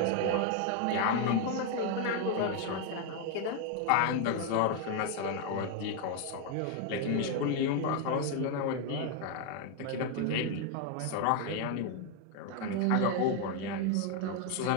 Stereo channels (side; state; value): both; different; correlation 0.01